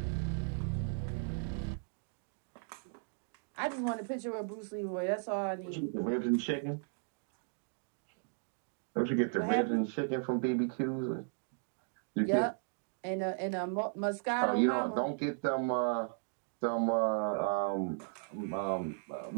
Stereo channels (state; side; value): silent; left; digital silence